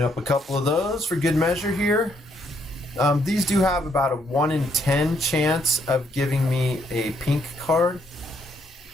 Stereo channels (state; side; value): normal; both; correlation 0.72